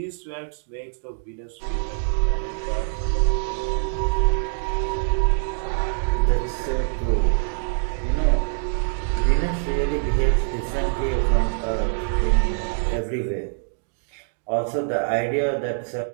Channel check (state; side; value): silent; left; digital silence